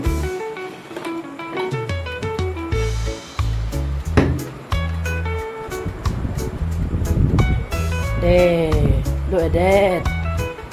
There. Look at that.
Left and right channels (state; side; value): identical; both; correlation 1.00